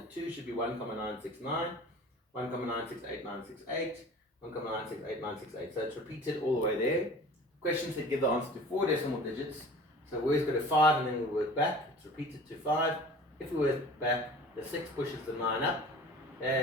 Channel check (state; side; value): normal; both; correlation 0.42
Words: 2 should be 1,969, 1,968,968, 1,968,968. So it's repeated all the way there. Questions that give the answer to 4 decimal digits. So we always go to 5 and then we work back. It's repeated to 5. If we work back, the 6 pushes the 9 up,